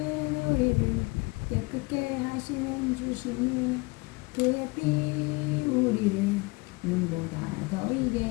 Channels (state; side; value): quieter; right; 25.5 dB